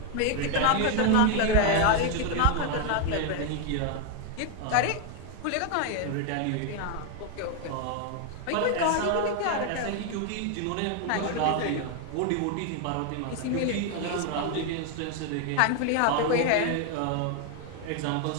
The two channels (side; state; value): both; different; correlation 0.01